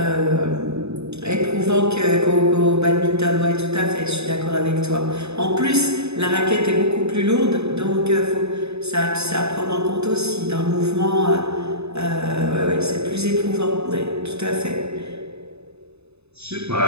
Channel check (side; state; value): left; late; 0.80 ms